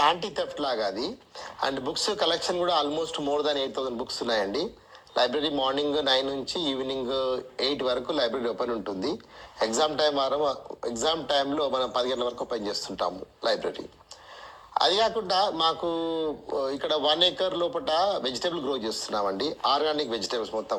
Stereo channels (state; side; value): identical; both; correlation 1.00